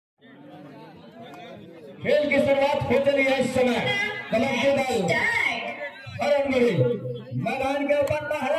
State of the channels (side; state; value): both; identical; correlation 1.00